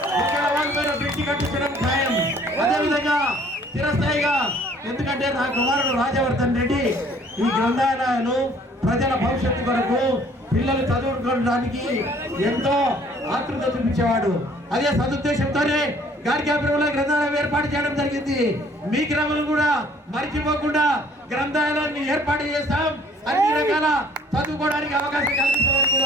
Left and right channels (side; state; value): both; normal; correlation 0.57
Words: బ్రిడ్జి కట్టించడం ఖాయం. అదేవిధంగా చిరస్థాయిగా, ఎందుకంటే నా కుమారుడు రాజవర్ధన్ రెడ్డి ఈ గ్రంథాలయాలు ప్రజల భవిష్యత్తు కొరకు పిల్లలు చదువుకోవడానికి ఎంతో ఆతృత చూపించేవాడు. అదే సదుద్దేశంతోనే గార్గ్యాపురంలో గ్రంథాలయం ఏర్పాటు చేయడం జరిగింది. మీ గ్రామంలో కూడా మర్చిపోకుండా గ్రంథాలయాన్ని ఏర్పాటు చేస్తాం, అన్ని రకాల చదువుకోవడానికి అవకాశం కల్పిస్తామని